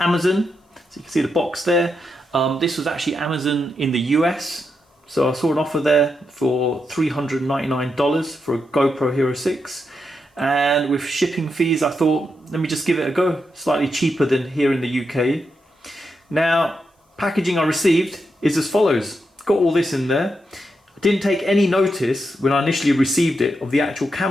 So you can see the box there. This was actually Amazon in the US. So I saw an offer there for $399 for a GoPro Hero 6. And with shipping fees, I thought, let me just give it a go. Slightly cheaper than here in the UK. Now, packaging I received is as follows. Got all this in there. I didn't take any notice when I initially received it of the actual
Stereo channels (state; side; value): normal; both; correlation 0.84